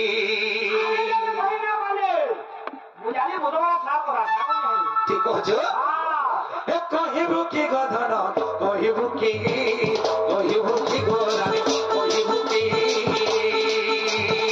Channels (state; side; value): identical; both; correlation 1.00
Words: ঠিক কছ কহিব কি গো ধন কহিব কি গো রানী কহিব কি